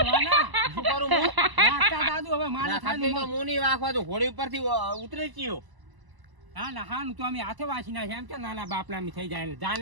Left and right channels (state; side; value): late; left; 1.0 ms